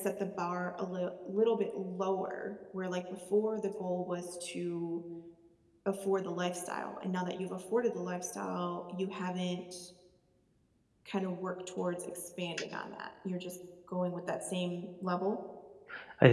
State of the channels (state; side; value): identical; both; correlation 1.00